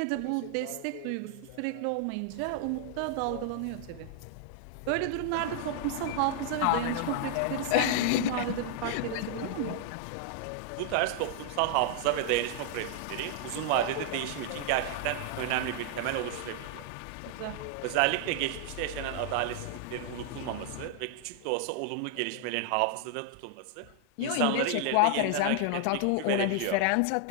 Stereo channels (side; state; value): both; different; correlation 0.00